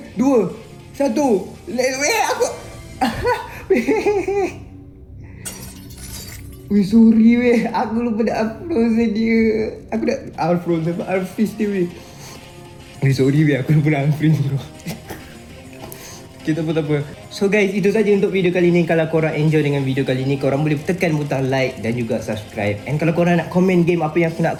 2, 1. Weh, aku. Weh, sorry, weh. Aku lupa nak unfrozen dia. Aku nak unfrozen, unfreeze dia, weh. Weh, sorry, weh. Aku lupa nak unfreeze tu. Okay, tak apa. So guys, itu saja untuk video kali ni. Kalau korang enjoy dengan video kali ni, korang boleh tekan butang like dan juga subscribe. And kalau korang nak komen game apa yang aku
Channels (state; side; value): identical; both; correlation 1.00